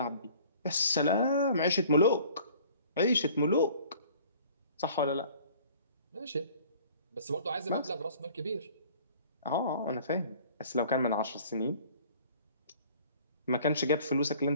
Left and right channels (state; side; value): inverted; both; correlation -0.52